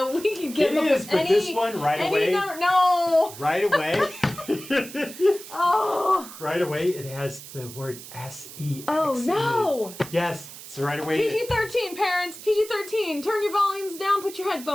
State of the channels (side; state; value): right; noise; hiss, 14 dB below the sound